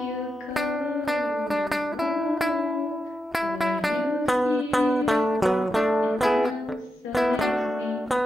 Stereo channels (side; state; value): both; normal; correlation 0.87